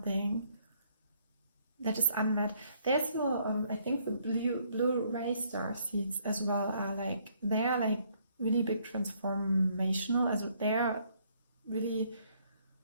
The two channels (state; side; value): inverted; both; correlation -0.67